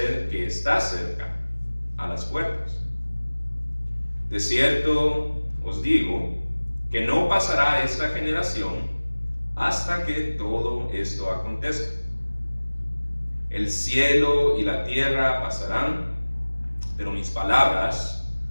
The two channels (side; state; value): both; inverted; correlation -1.00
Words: que está cerca, a las puertas. De cierto os digo que no pasará esta generación hasta que todo esto acontezca. El cielo y la tierra pasarán, pero mis palabras